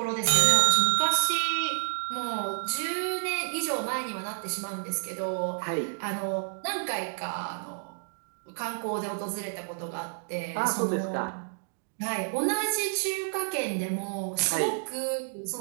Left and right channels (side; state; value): left; silent; digital silence